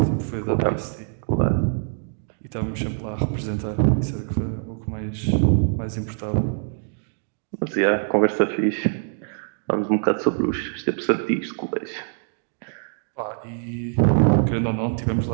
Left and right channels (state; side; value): silent; left; 63 dB below the other